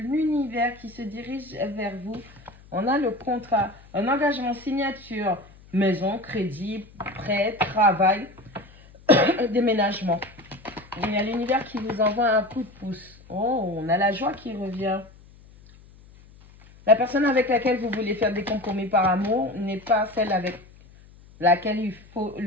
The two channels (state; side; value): noise; left; hum, 24 dB below the sound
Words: qui se dirige vers vous. On a le contrat, un engagement, signature, maison, crédit, prêt, travail, déménagement. Il y a l'univers qui vous envoie un coup de pouce. Oh, on a la joie qui revient. La personne avec laquelle vous voulez faire des compromis par amour n'est pas celle avec laquelle il faut